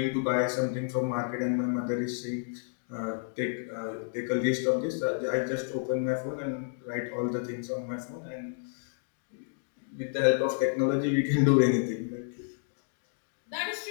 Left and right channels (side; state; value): right; silent; digital silence